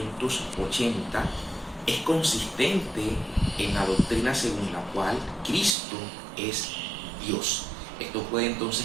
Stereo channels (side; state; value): left; drops out; at 5.8 s